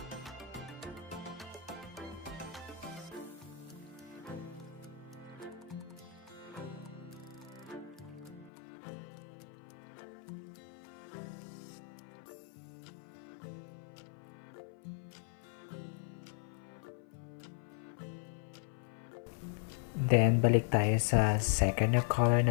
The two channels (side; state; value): right; drops out; at 8.5 s